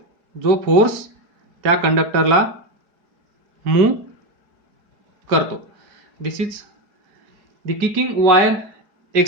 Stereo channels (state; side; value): late; left; 4.8 ms